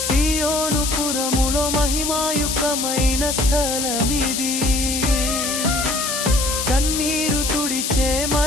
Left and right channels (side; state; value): left; noise; hiss, 1 dB below the sound